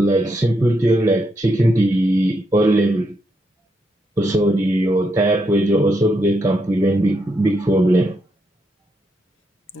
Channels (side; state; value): both; normal; correlation 0.80